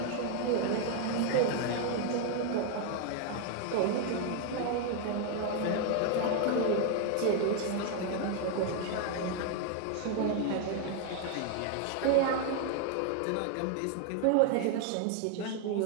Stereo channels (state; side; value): different; both; correlation 0.00